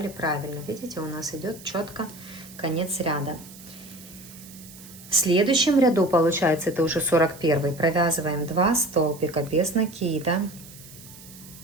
правильно. Видите, у нас идет четко конец ряда. В следующем ряду, получается, это уже 41-й, провязываем 2 столбика без накида.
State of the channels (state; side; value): noise; right; hiss, 19 dB below the sound